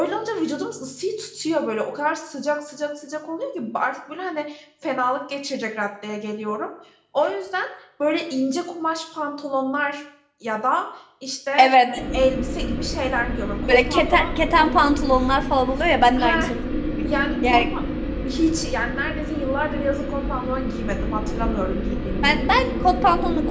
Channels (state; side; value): identical; both; correlation 1.00